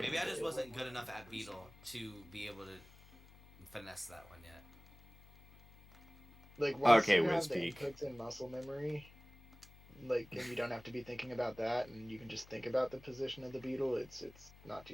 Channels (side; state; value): left; noise; hum, 22 dB below the sound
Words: maybe I good. just wasn't good enough at beetle to be able to finesse that one yet. Like once Okay, you have the Wispeak. inputs in muscle memory, like, and you don't have to be thinking about that, and you can just think about the position of the beetle. It's not too